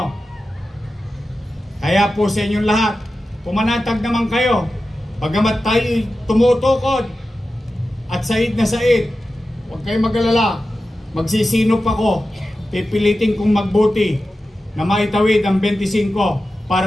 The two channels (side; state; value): both; normal; correlation 0.93